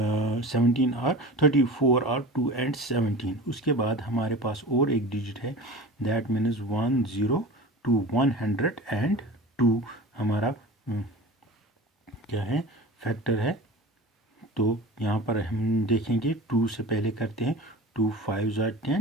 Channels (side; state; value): both; normal; correlation 0.35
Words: 17 are 34 are 2 and 17। उसके बाद हमारे पास और एक डिजिट है, दैट मीन्स 102, 102 हमारा क्या है? फैक्टर है। तो यहाँ पर हम देखेंगे 2 से पहले करते हैं 2 5 ज़ा